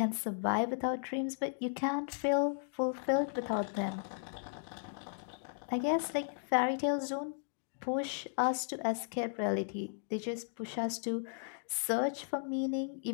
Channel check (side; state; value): right; silent; digital silence